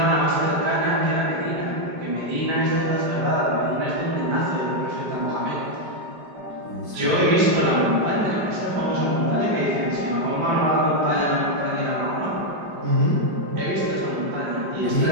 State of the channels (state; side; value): late; left; 5.1 ms